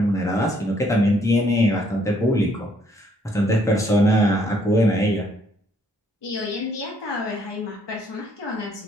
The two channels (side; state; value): both; normal; correlation 0.67